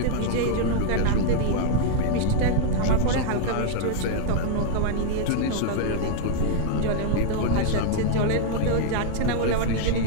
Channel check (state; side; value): different; both; correlation -0.01